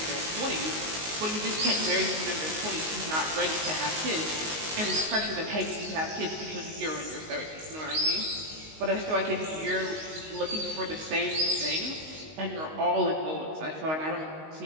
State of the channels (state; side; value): late; left; 19 ms